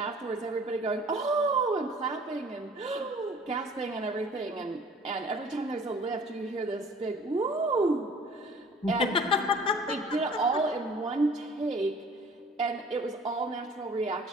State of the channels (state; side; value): normal; both; correlation 0.50